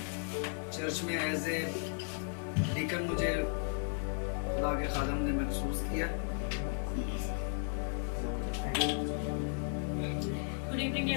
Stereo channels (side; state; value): right; silent; 54 dB below the other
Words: चर्च में एज ए डीकन मुझे खुदा के खादम ने महसूस किया। गुड इवनिंग